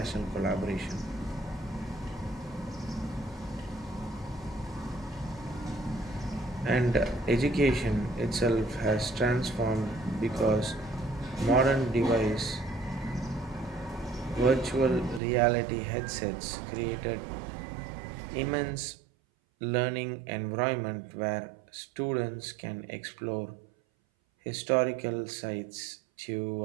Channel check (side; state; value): left; drops out; at 15.2 s